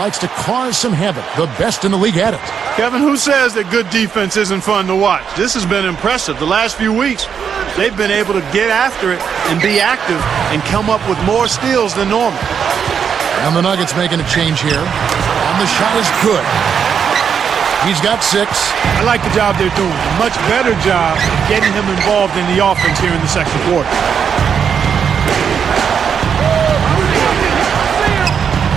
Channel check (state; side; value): quieter; left; 7.3 dB